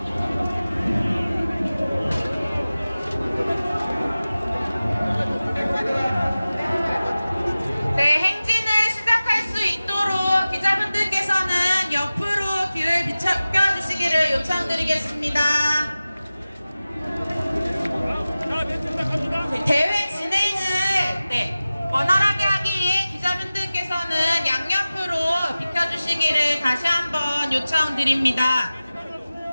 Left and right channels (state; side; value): inverted; both; correlation -0.97